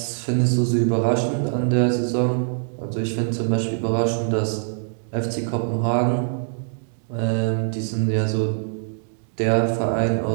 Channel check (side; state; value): left; silent; digital silence